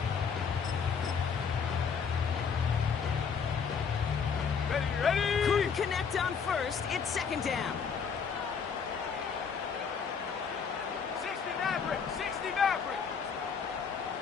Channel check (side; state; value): right; quieter; 6.2 dB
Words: Ready. Couldn't connect on first. It's second down. 60 Maverick. 60 Maverick.